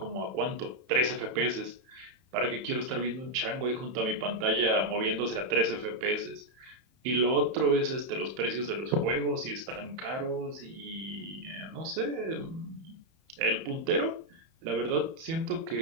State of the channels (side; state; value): left; late; 31 ms